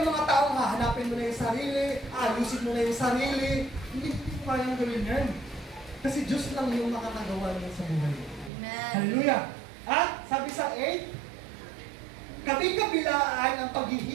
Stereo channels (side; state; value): left; drops out; at 8.5 s